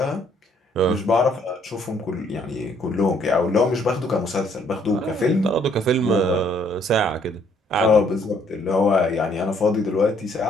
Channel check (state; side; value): normal; both; correlation 0.65